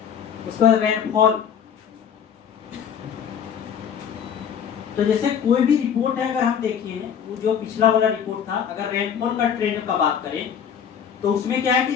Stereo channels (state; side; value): quieter; right; 8.0 dB